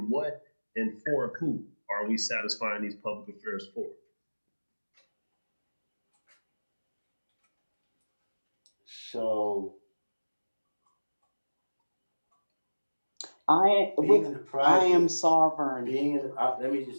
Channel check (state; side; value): inverted; both; correlation -1.00